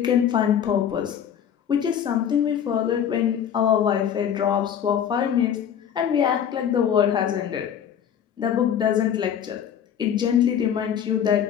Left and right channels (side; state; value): right; quieter; 8.9 dB